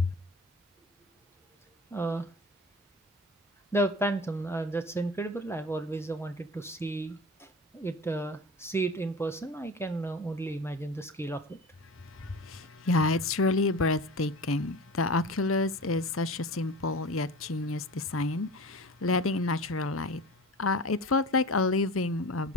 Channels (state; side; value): normal; both; correlation 0.35